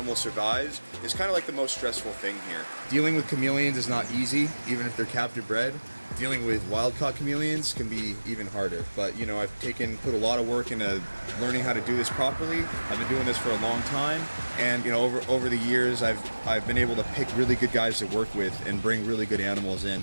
survives is kind of like the most stressful thing here. Dealing with chameleons is not easy, even if they're captive bred. Dealing with wild-caught chameleons can be even harder. But you know, I've put a lot of work into learning how to do this properly. I've been doing this for a long time, and you know, over the years, I've been able to pick really good guys to work with and bring really good animals in.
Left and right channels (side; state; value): both; inverted; correlation -1.00